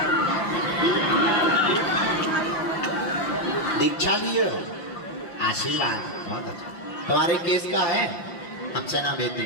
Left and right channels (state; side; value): late; right; 5.8 ms